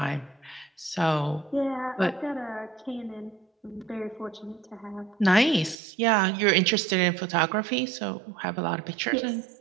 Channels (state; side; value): drops out; left; at 5.8 s